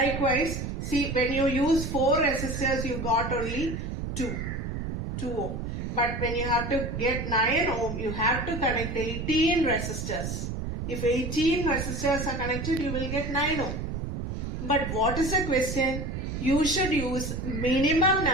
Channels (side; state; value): right; noise; rumble, 4 dB below the sound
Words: see, when you use 4 resistors, you got only 2 ohm. But when you have to get 9 ohm, you have to connect 18 resistors. If 18 resistors are connected, you will get 9 ohm. But what is the question? You should use minimum